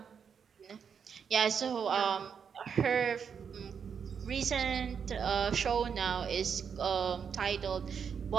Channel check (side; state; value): left; quieter; 6.9 dB